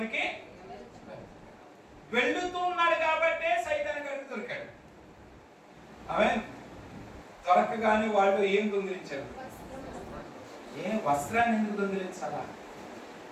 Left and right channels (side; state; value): both; identical; correlation 1.00